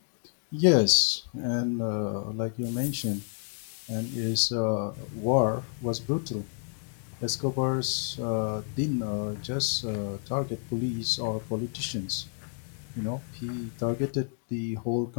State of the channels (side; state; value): right; silent; 55 dB below the other